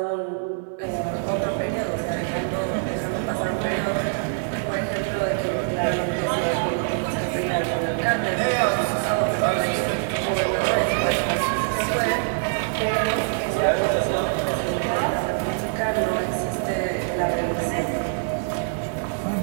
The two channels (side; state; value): left; silent; digital silence